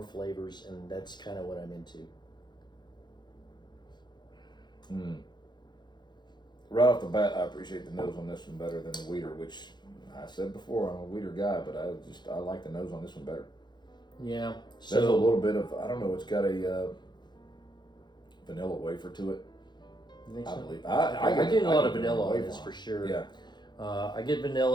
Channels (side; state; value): right; late; 0.21 ms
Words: flavors, and that's kind of what I'm into. Right off the bat, I appreciate the nose on this one better than the wheater, which I said before, I'm a wheater guy, but I like the nose on this one better. Yeah. There's a little bit of, I don't know, it's got a vanilla wafer to it. You think I so? believe. I get a lot of vanilla on this for sure. Yeah. I get